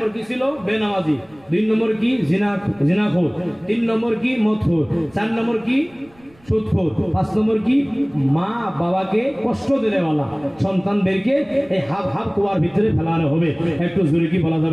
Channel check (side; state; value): right; noise; rumble, 29 dB below the sound